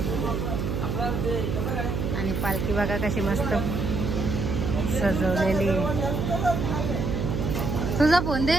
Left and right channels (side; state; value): right; noise; hum, 1 dB below the sound